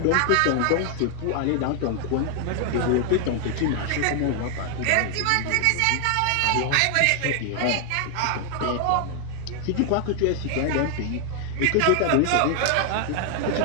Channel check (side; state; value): both; different; correlation 0.00